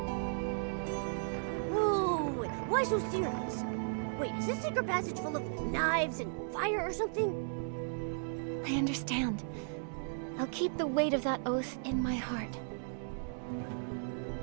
Whoa, why so serious? Wait, is this secret passage full of knives and fire or something? I understand. I'll keep the weight of that oath in my heart.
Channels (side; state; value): left; silent; digital silence